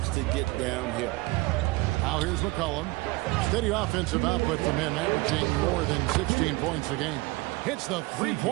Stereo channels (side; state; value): left; quieter; 22.7 dB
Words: to get downhill. Now here's McCollum. Steady offensive output from him, averaging more than 16 points a game. Hits the